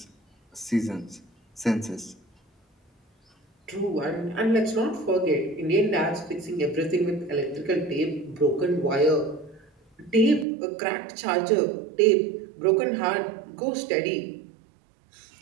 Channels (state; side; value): drops out; left; at 10.5 s